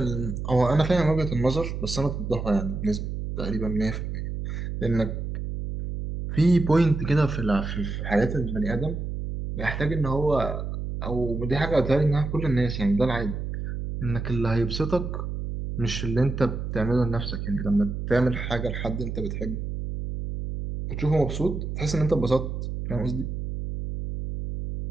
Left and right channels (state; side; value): noise; right; hum, 5 dB below the sound